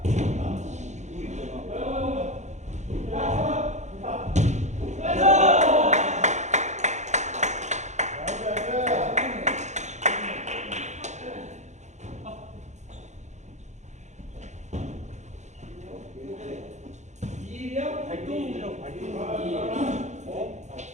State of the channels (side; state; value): left; late; 0.34 ms